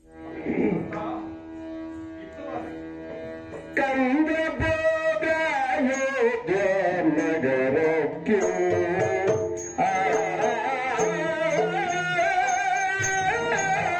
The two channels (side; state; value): both; identical; correlation 1.00